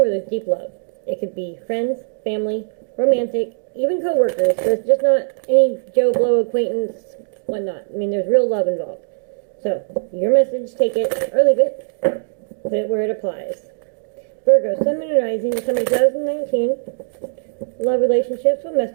there's deep love. It could be friends, family, romantic, even co-workers. But it's just not any Joe Blow acquaintance, whatnot. I mean, there's real love involved. So, your message, take it or leave it. Put it where it applies. Virgo, Sun, Moon, and Rising, December 2019, love relationships. What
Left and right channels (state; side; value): silent; left; digital silence